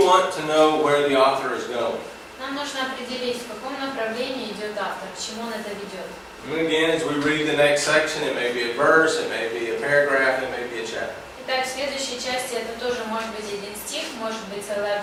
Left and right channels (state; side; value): identical; both; correlation 1.00